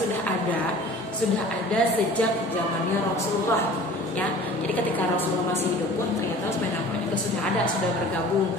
ada sejak zamannya Rasulullah ya. Jadi ketika Rasulullah masih hidup pun ternyata Utsman bin Affan itu sudah bergabung.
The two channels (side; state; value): both; normal; correlation 0.44